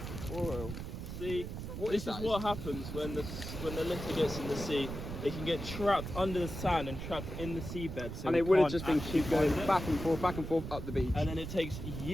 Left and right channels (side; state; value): right; noise; rumble, 7 dB below the sound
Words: oil. See, Is this is that? what happens when the litter gets in the sea. It can get trapped under the sand and trapped in the seabed. So And we it would have can't just been actually keep going find it. back and forth up the beach. And then it takes